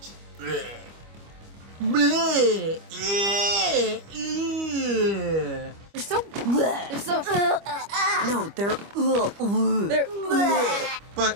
Bleh. Bleh. Yeah. Yeah. They're so bleh. They're so no, they're bleh. But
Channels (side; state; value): left; late; 25 ms